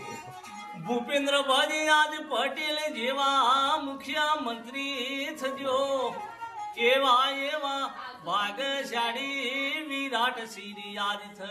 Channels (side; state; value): both; identical; correlation 1.00